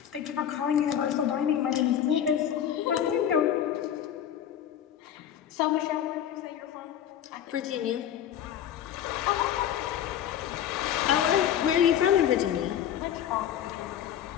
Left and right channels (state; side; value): quieter; right; 10.0 dB